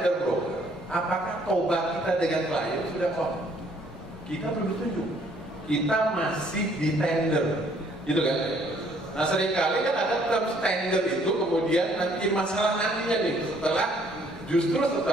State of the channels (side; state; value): both; normal; correlation 0.63